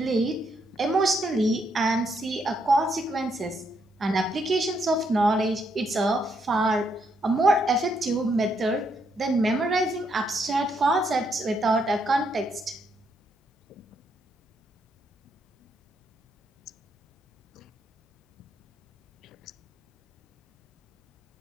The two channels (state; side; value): normal; both; correlation 0.76